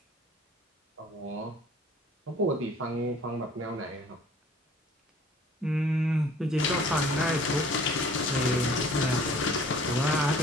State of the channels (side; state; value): both; normal; correlation 0.52